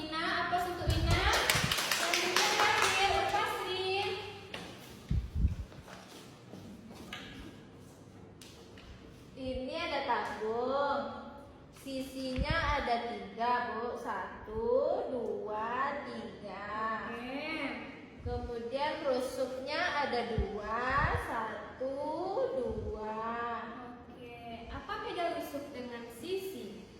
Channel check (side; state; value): both; identical; correlation 1.00